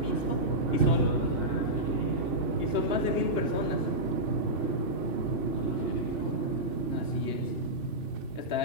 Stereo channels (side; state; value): right; late; 2.9 ms